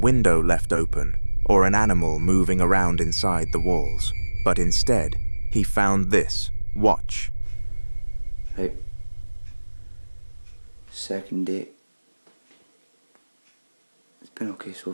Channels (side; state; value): both; inverted; correlation -1.00